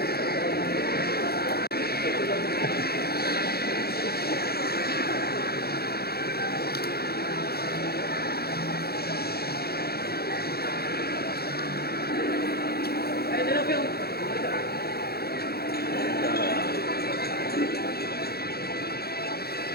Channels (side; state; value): right; late; 0.46 ms